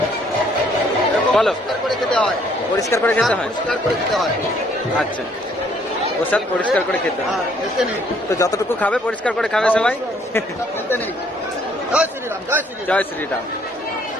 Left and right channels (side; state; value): both; normal; correlation 0.64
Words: বলো, পরিষ্কার করে খেতে হয়। আচ্ছা, প্রসাদ পরিষ্কার করে খেতে হয়, তো যতটুকু খাবে পরিষ্কার করে খাবে সবাই। জয় শ্রীরাম।